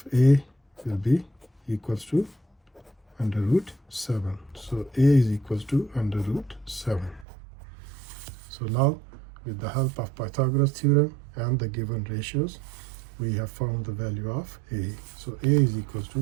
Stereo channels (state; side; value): drops out; left; at 7.2 s